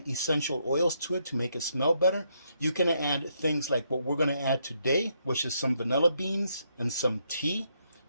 essential oils to it to make it smell better. You can add things like what we're going to add today, which is some vanilla beans and some tea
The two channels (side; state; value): both; inverted; correlation -0.76